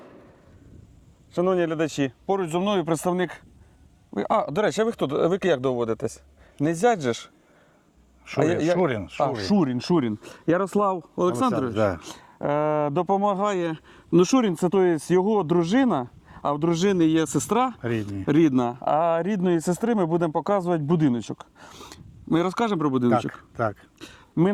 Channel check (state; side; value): identical; both; correlation 1.00